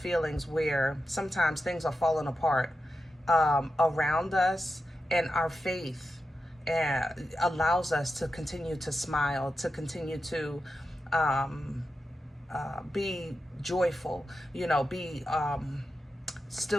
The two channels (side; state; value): both; normal; correlation 0.90